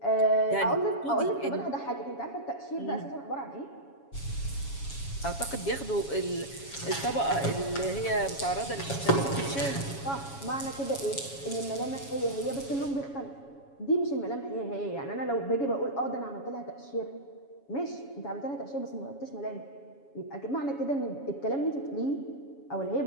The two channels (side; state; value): right; late; 7.2 ms